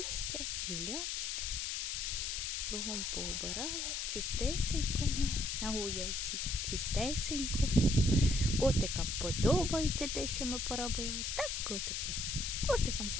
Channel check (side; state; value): left; noise; hiss, 2 dB below the sound